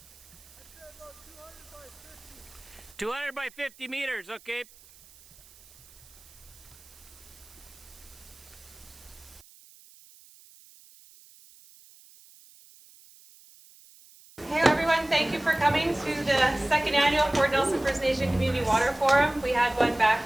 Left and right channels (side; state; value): right; noise; hiss, 24 dB below the sound